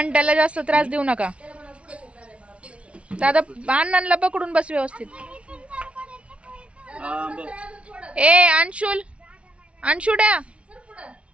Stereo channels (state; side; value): late; left; 0.061 ms